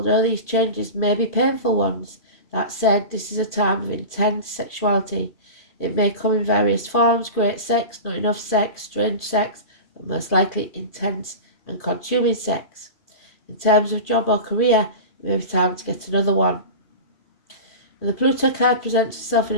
these changes may be painful ones, that said, this is a time of intense sexuality. It may come in various forms: great sex, not enough sex, strange sex, but most likely intense and consuming sex. In terms of job or career, it may be time to get another one. When the Pluto card presents itself in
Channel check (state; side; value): late; right; 2.4 ms